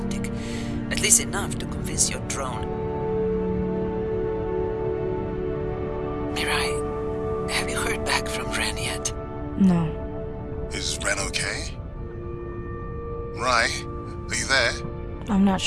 At least enough to convince your drone. Mirai, have you heard back from Ren yet? No. Is Ren okay? Rai, are you there? I'm not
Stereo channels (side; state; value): both; identical; correlation 1.00